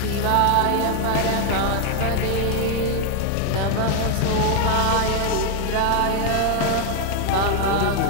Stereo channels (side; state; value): both; different; correlation 0.01